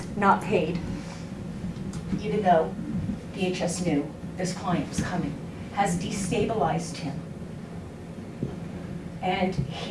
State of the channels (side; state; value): both; identical; correlation 1.00